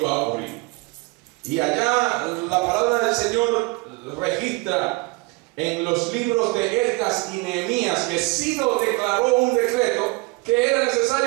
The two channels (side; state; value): left; quieter; 25.2 dB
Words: a ocurrir. Y allá la palabra del Señor registra en los libros de Esdras y Nehemías que Ciro declaró un decreto que era